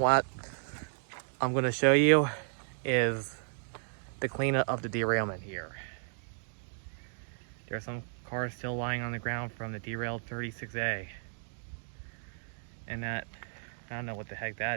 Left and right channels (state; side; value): silent; left; digital silence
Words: I'm going to show you is the cleanup of the derailment here. There are some cars still lying on the ground from the derailed 36A. And that, I don't know what the heck